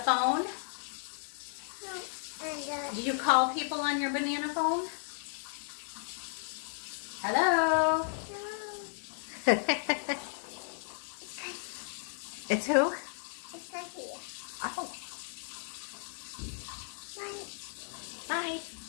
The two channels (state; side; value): silent; right; digital silence